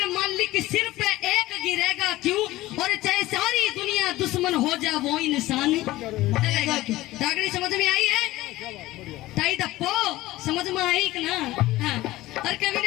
मालिक सिर पे एक गिरेगा क्यों, और चाहे सारी दुनिया दुश्मन हो जा वो इंसान चलेगा क्यों। डागड़ी समझ में आई है? ताई दप्पो समझ में आई कि ना? हाँ। और कवि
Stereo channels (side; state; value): right; quieter; 17.4 dB